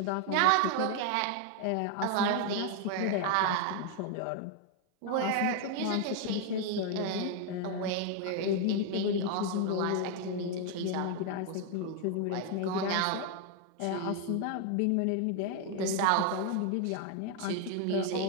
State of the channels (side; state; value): both; different; correlation 0.01